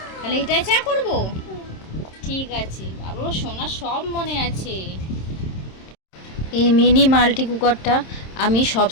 তাহলে এটাই চা করব। ঠিক আছে বাবা, সোনা সব মনে আছে। এই মিনি মাল্টি কুকারটা আমি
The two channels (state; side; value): late; right; 26 ms